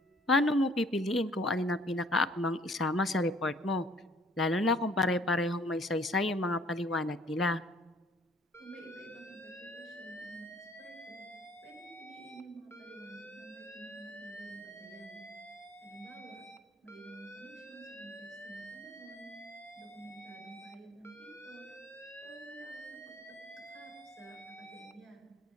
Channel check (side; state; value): both; normal; correlation 0.58